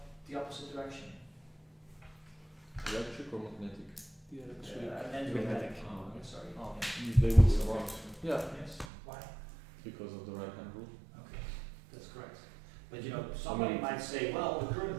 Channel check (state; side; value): drops out; left; at 8.8 s